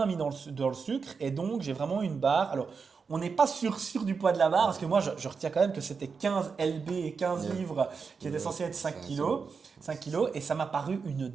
mis dans le sucre et donc j'ai vraiment une barre. Alors, on n'est pas sûr du poids de la barre parce que moi, je retiens quand même que c'était 15 lb et 15 Yeah. livres qui étaient Yeah. censés être 5 C'est kilos. 5 kilos et ça m'a paru une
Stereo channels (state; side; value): quieter; left; 5.4 dB